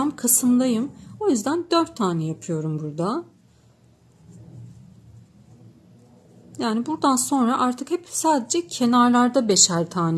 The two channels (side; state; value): both; identical; correlation 1.00